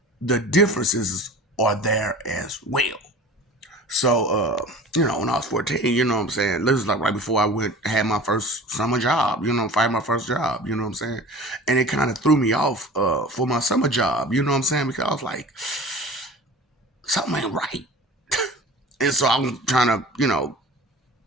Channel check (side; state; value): both; normal; correlation 0.40